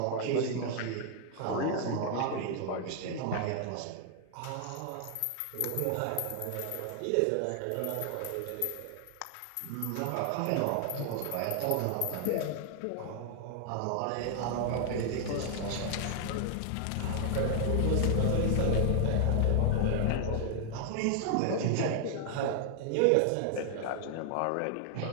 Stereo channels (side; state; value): both; different; correlation 0.00